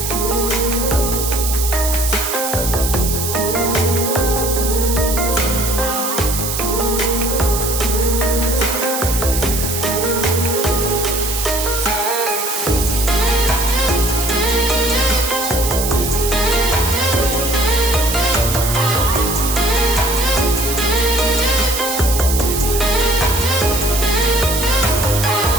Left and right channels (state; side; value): noise; right; hiss, 3 dB below the sound